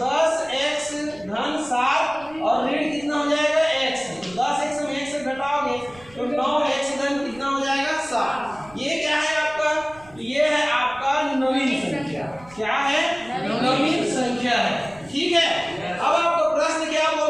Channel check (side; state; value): right; noise; rumble, 24 dB below the sound